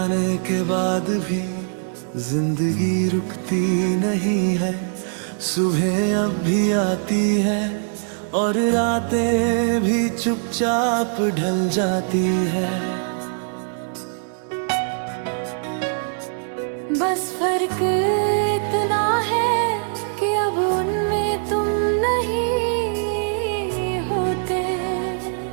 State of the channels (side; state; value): left; silent; 64 dB below the other